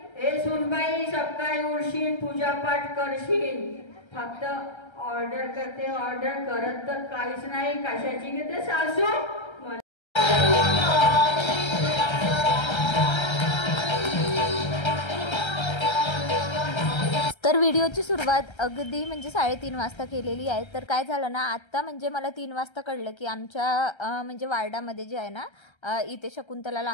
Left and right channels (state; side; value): late; right; 1.3 ms